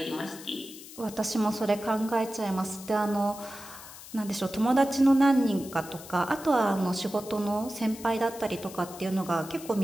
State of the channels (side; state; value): left; noise; hiss, 16 dB below the sound